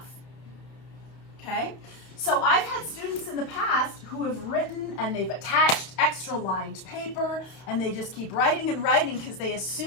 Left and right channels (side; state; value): right; late; 31 ms